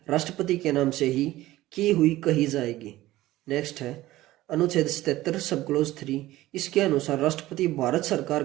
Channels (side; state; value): left; quieter; 16.5 dB